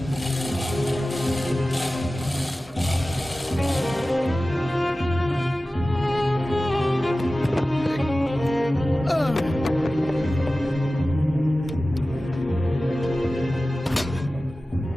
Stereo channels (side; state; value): both; normal; correlation 0.96